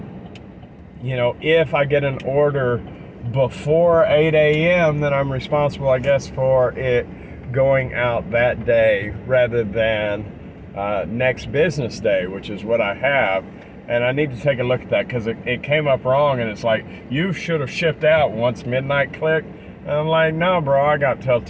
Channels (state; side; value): identical; both; correlation 1.00